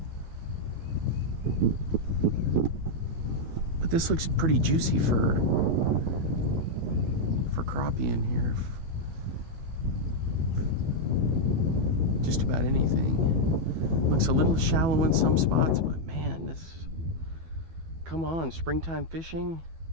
But this looks pretty juicy for crappie in here. Just about anything. Looks a little shallow in some spots, but man, this, come on, springtime fishing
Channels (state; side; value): late; left; 12 ms